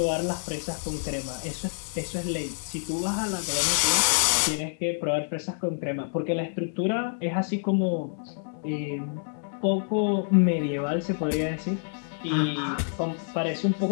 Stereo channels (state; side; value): silent; right; digital silence